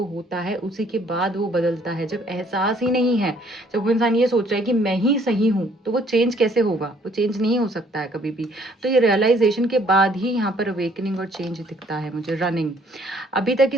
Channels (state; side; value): normal; both; correlation 0.62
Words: होता है उसी के बाद वो बदलता है। जब एहसास ही नहीं है, जब वो इंसान ये सोच रहा है कि मैं ही सही हूँ, तो वो चेंज कैसे होगा? वो चेंज नहीं हो सकता है कभी भी। तो ये रियलाइजेशन के बाद ही यहाँ पर अवेकनिंग और चेंज दिखता है मुझे। रनिंग, अभी तक